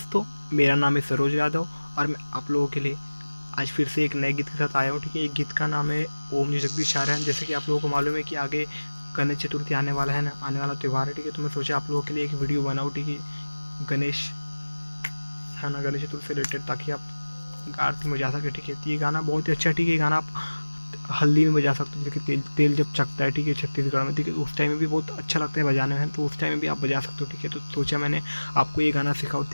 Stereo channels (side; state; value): both; inverted; correlation -1.00